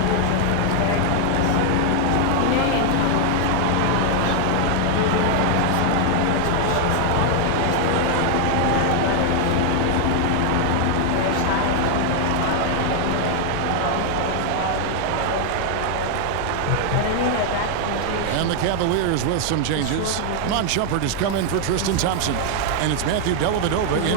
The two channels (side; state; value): both; different; correlation 0.00